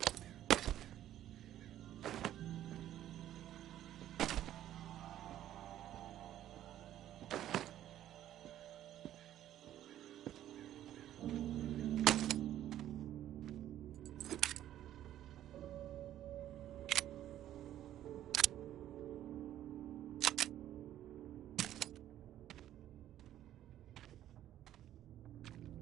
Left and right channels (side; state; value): left; quieter; 12.2 dB